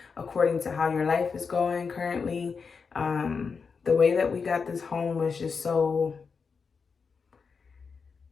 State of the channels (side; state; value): right; quieter; 5.4 dB